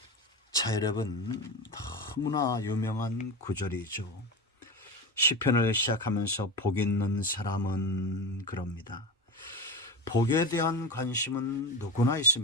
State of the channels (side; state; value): both; normal; correlation 0.23